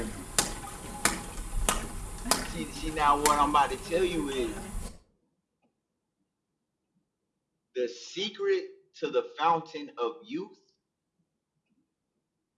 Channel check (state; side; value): identical; both; correlation 1.00